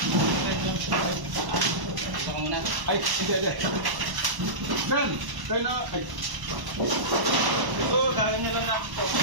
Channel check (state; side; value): late; left; 1.0 ms